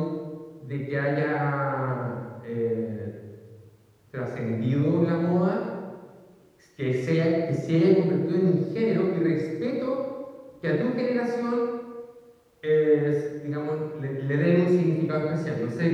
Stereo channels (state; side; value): identical; both; correlation 1.00